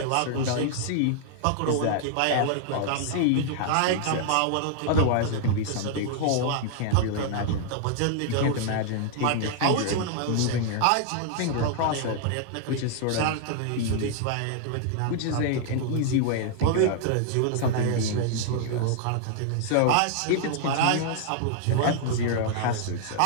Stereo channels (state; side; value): different; both; correlation 0.00